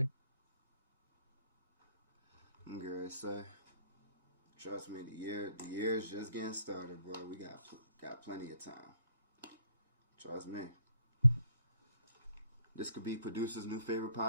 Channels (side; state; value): both; inverted; correlation -0.67